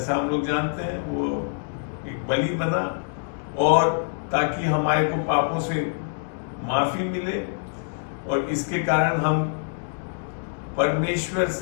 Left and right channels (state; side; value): silent; right; digital silence